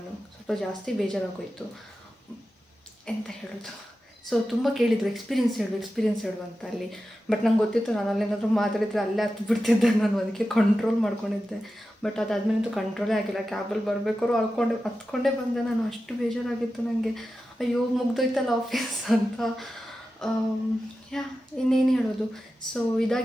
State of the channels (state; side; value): normal; both; correlation 0.92